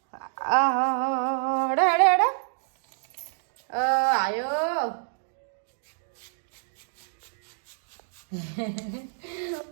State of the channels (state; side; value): silent; left; digital silence